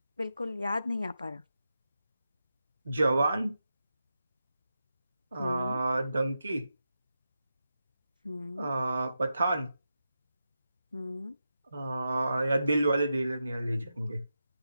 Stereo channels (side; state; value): both; inverted; correlation -0.88